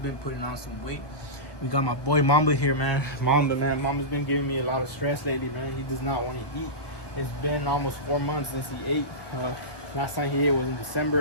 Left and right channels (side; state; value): right; late; 1.2 ms